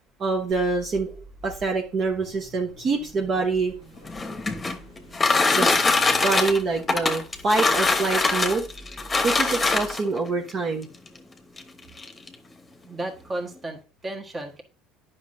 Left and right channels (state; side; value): normal; both; correlation 0.77